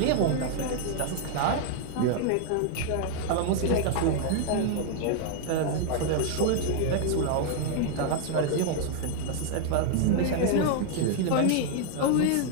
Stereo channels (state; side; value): different; both; correlation 0.00